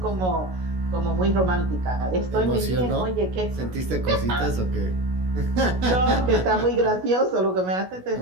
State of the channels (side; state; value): left; late; 16 ms